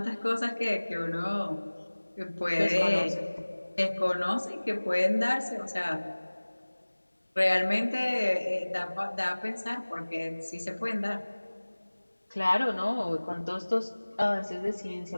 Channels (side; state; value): both; inverted; correlation -1.00